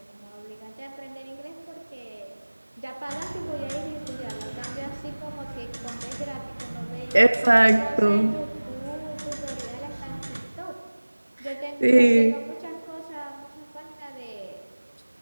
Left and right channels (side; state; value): both; inverted; correlation -1.00